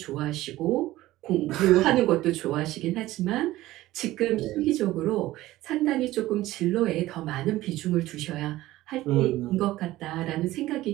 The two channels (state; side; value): quieter; left; 16.5 dB